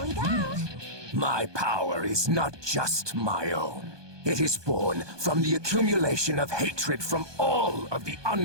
we go! My power is not just my own. It is born from the accumulation of hatred from all of the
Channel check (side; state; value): left; late; 1.2 ms